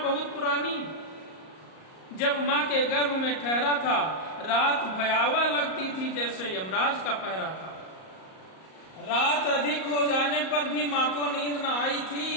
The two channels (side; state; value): right; late; 38 ms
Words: बहुत पुरानी, जब माँ के गर्भ में ठहरा था। रात भयावह लगती थी जैसे यमराज का पहरा था। रात अधिक हो जाने पर भी माँ को नींद न आई